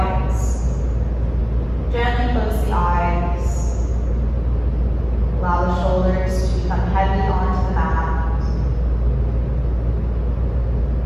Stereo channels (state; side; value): identical; both; correlation 1.00